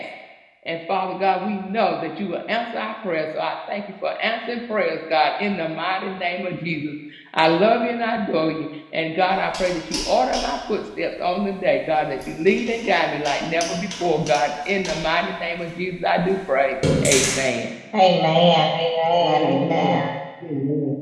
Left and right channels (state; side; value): identical; both; correlation 1.00